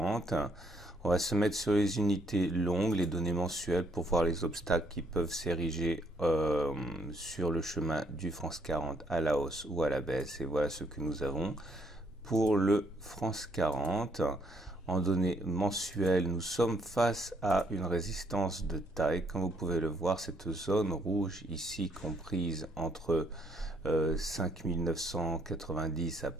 On va se mettre sur les unités longues, les données mensuelles pour voir les obstacles qui peuvent s'ériger sur le chemin du France 40 à la hausse ou à la baisse. Et voilà ce que nous avons pour le France 40. En données mensuelles, nous sommes face à une résistance de taille. Comme vous pouvez le voir, cette zone rouge ici comprise entre 5990 à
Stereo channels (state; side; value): normal; both; correlation 0.69